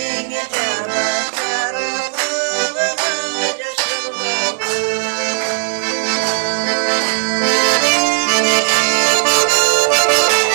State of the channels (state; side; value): silent; left; digital silence